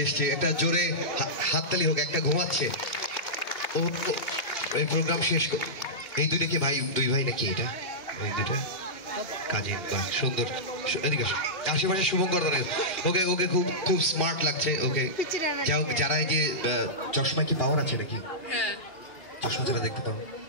এসছে, একটা জোরে হাততালি হোক। একটা ঘুমাচ্ছে, ও এই প্রোগ্রাম শেষ এই দুইটা কি ভাই? দুই ভাই নাকি এটা? এই দুইটা কাজিন, বাহ সুন্দর। এদিকে আশেপাশে শুভঙ্কর ধরে। ওকে ওকে, খুব খুব স্মার্ট লাগছে। ওকে, যাই হোক, যারা এই যে চশমায় কি পাওয়ার আছে নাকি? চশমা যারা দেখতে পান,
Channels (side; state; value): right; late; 2.8 ms